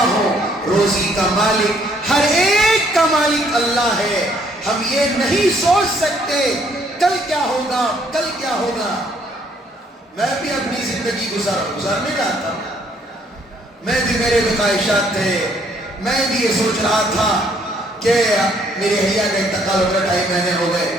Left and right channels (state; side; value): normal; both; correlation 0.65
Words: ہوں, روزی کا مالک, ہر ایک کا مالک اللہ ہے. ہم یہ نہیں سوچ سکتے کل کیا ہوگا, کل کیا ہوگا. میں بھی اپنی زندگی گزارنے رہا تھا, میں بھی, میرے بھی خواہشات تھے. میں بھی یہ سوچ رہا تھا کہ میری حیا کا انتقال ہو گیا, 2.5 مہینے ہو گئے.